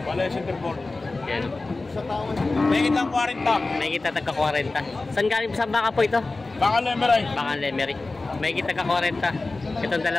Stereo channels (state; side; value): quieter; right; 3.4 dB